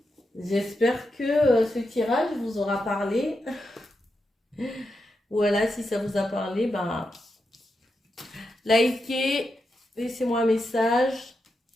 J'espère que ce tirage vous aura parlé. Voilà, si ça vous a parlé, ben, likez, laissez-moi un message.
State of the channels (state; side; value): normal; both; correlation 0.86